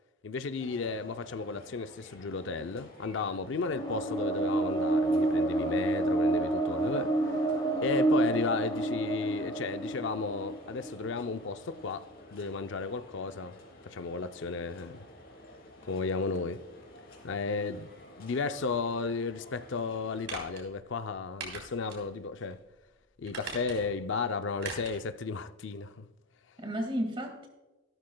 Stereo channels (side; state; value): both; normal; correlation 0.34